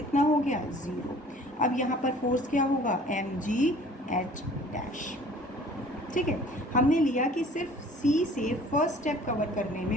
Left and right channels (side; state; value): both; normal; correlation 0.51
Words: हो गया, 0. अब यहाँ पर force क्या होगा, mg h dash. ठीक है, हमने लिया कि सिर्फ C से फर्स्ट स्टेप कवर करने